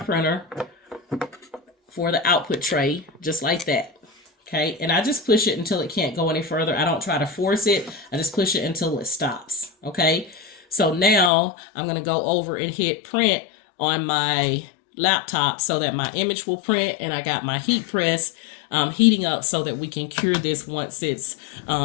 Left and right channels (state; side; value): drops out; right; at 11.3 s